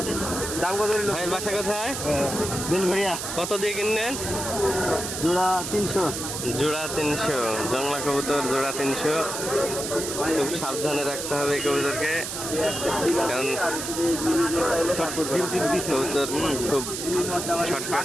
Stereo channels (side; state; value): right; noise; hiss, 5 dB below the sound